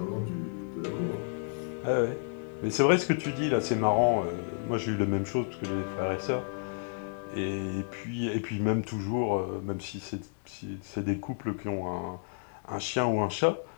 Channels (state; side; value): quieter; right; 39.9 dB